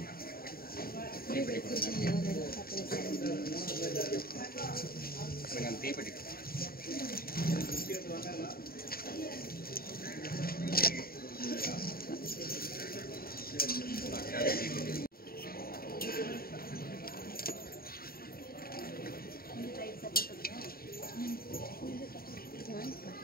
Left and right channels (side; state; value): right; late; 0.43 ms